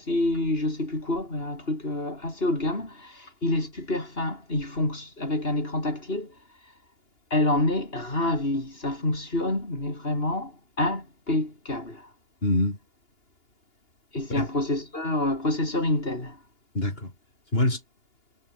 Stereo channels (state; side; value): late; right; 2.8 ms